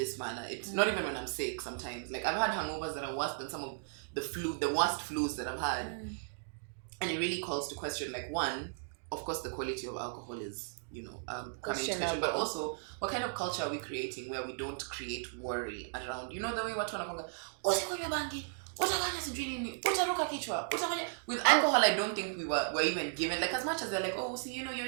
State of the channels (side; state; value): left; silent; digital silence